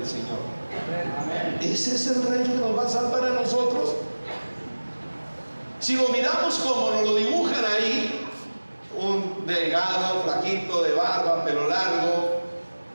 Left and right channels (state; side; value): inverted; both; correlation -1.00